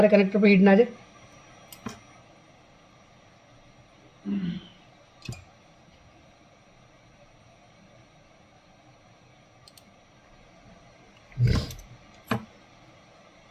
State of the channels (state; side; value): identical; both; correlation 1.00